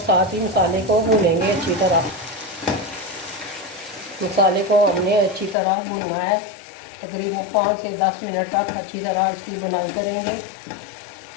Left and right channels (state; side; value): drops out; right; at 5.6 s